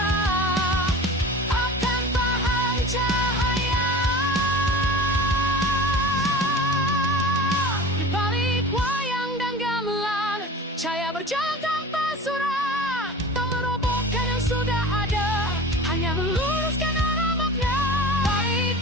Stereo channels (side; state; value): both; normal; correlation 0.37